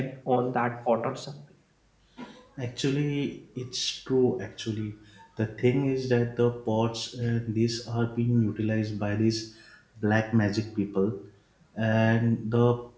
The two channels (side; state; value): both; identical; correlation 1.00